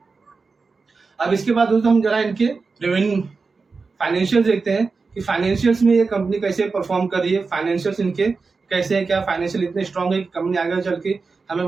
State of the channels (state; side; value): quieter; left; 4.4 dB